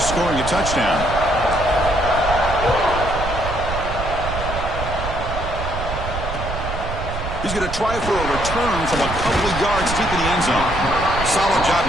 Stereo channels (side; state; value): right; noise; rumble, 6 dB below the sound